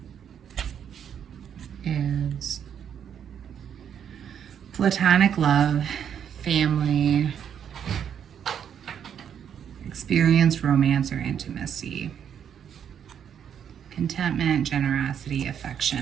Is platonic love, family, experience, romance, or intimacy, contentment, generosity,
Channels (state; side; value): quieter; left; 8.5 dB